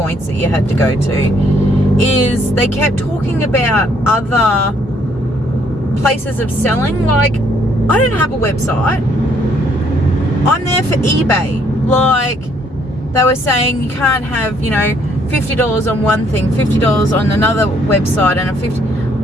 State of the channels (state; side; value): normal; both; correlation 0.67